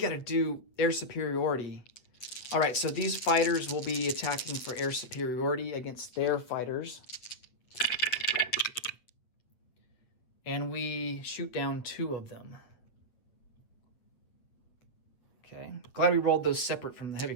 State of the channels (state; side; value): late; right; 8.6 ms